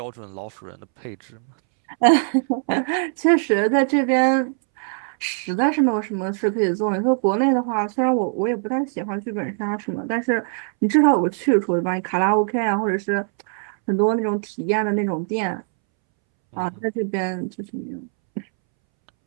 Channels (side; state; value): left; silent; 64 dB below the other